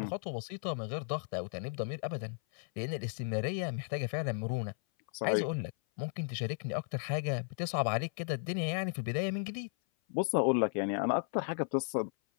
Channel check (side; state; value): right; silent; 54 dB below the other